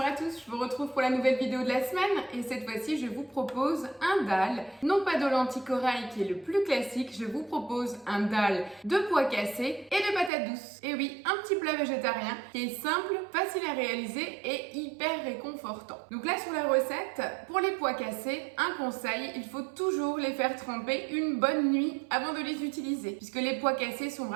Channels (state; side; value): drops out; left; at 10.3 s